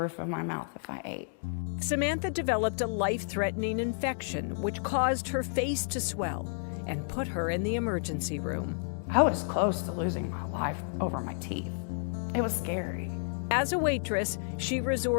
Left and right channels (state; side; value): silent; right; digital silence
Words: of my mouth if I ate. Samantha developed a life-threatening infection which caused her face to swell and put her in the emergency room. I was close to losing my life over my teeth. It was scary. As a waitress, she